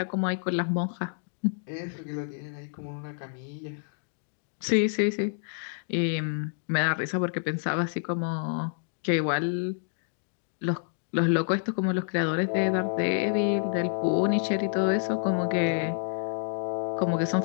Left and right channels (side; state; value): right; silent; digital silence